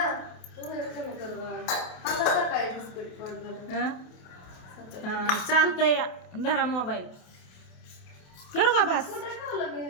पोहे कमी कर बाळा. आता सकाळी बिस्किट पडलं. चालतंय, धरा मोबाईल. करू का बस? कुठं ठेवलं मी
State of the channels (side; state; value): right; late; 28 ms